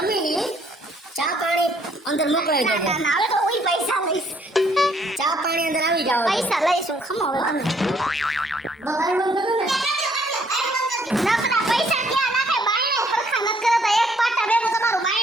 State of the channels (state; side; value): normal; both; correlation 0.65